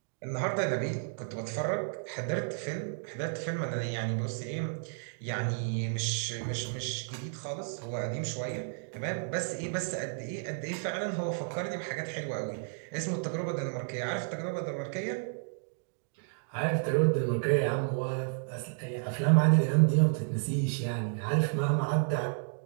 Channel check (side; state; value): left; silent; digital silence